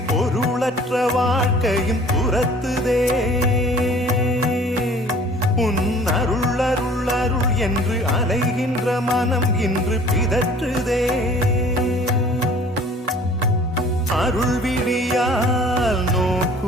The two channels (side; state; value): both; normal; correlation 0.50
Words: பொருளற்ற வாழ்க்கையும் துரத்துதே உன் அருள் அருள் அருள் என்று அலைகின்ற மனம் இன்று பிதற்றுதே அருள் விழியால்